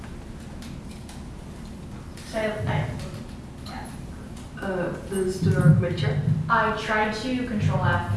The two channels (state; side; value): identical; both; correlation 1.00